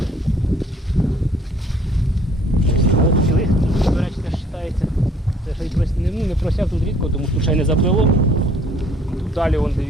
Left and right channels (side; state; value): both; normal; correlation 0.59